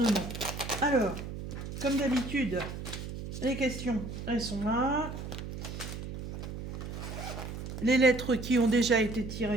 Alors, comme d'habitude, les questions, elles sont là. Les lettres qui ont déjà été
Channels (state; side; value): noise; right; hum, 8 dB below the sound